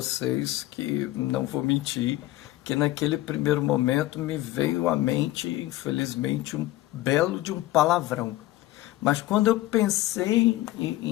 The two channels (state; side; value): quieter; right; 16.5 dB